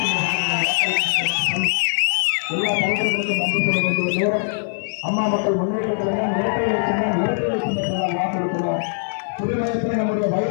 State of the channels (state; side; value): silent; right; 56 dB below the other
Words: எல்லா தலைவர்களுக்கும் நன்றி சொல்ல வேண்டிய நேரம். அம்மா மக்கள் முன்னேற்ற கழகம் இரட்டை சின்னத்தால் வாக்களிக்கிறோம். புதுமையத்தில் நம்முடைய